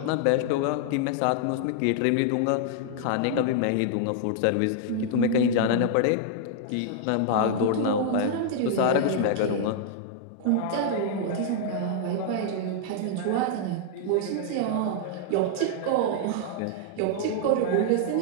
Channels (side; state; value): both; different; correlation -0.01